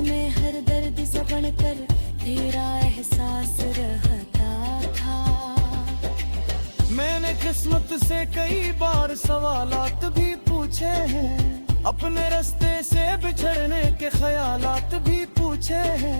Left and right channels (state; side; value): inverted; both; correlation -1.00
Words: हर दर्द से बनकर तेरा एहसास रहता था। मैंने किस्मत से कई बार सवालात भी पूछे हैं, अपने रास्ते से बिछड़ने के ख्यालात भी पूछे